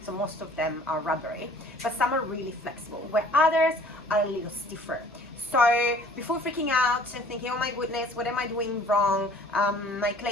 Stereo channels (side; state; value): left; noise; hum, 28 dB below the sound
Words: so most of them are rubbery, but some are really flexible, where others are a little stiffer. So before freaking out and thinking, oh my goodness, what am I doing wrong? My